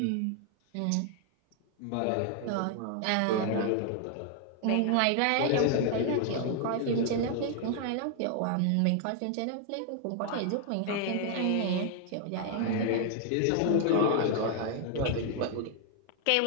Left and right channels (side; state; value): both; different; correlation 0.00